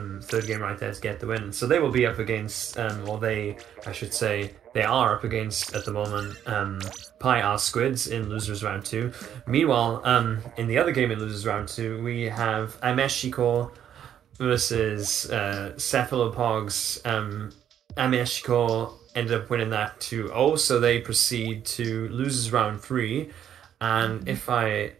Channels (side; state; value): left; quieter; 9.8 dB